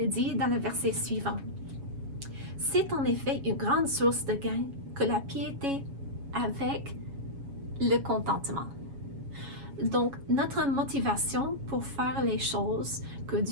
dit dans le verset suivant. C'est en effet une grande source de gain que la piété avec le contentement. Donc, notre motivation pour faire les choses que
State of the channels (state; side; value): late; left; 7.2 ms